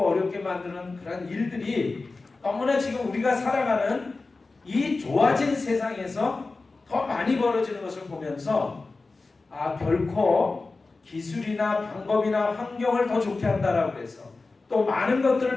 어렵게 만드는 그런 일들이 너무나 지금 우리가 살아가는 이 좋아진 세상에서 더 많이 벌어지는 것을 보면서 결코 기술이나 방법이나 환경을 더 좋게 한다라고 해서 또 많은 것들을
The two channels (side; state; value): right; quieter; 3.7 dB